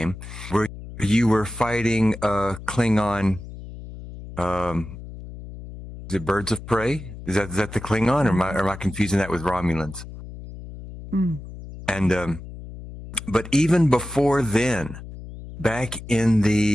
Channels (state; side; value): noise; left; hum, 13 dB below the sound